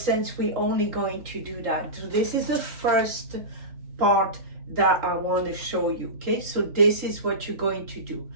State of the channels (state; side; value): late; left; 3.8 ms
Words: since we're only going to do that. So this is the first part that I want to show you. Okay, so this is what you're going to do.